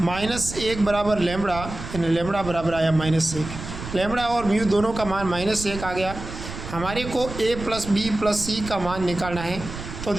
बराबर लेमड़ा, यानी लेमड़ा बराबर आया -1। लेमड़ा और म्यू दोनों का मान -1 आ गया। हमारे को ए प्लस बी प्लस सी का मान निकालना है। तो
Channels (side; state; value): right; noise; rumble, 10 dB below the sound